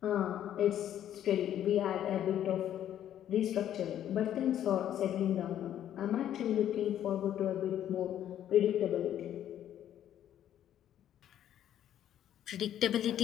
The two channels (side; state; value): right; quieter; 10.9 dB